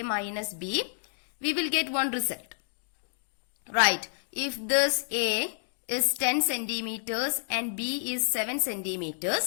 minus B, we will get one result. Right, if this A is 10 centimeters and B is 7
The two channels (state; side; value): silent; right; digital silence